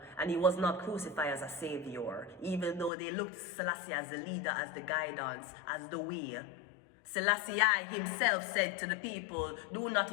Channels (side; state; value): right; drops out; at 2.9 s